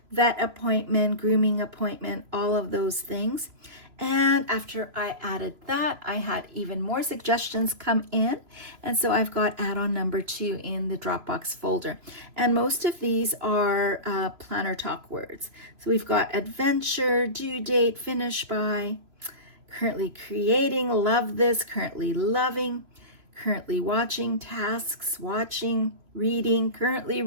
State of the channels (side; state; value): left; late; 3.0 ms